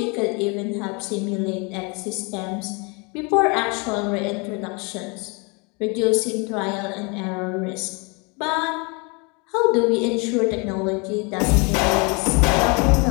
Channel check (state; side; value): quieter; right; 30.7 dB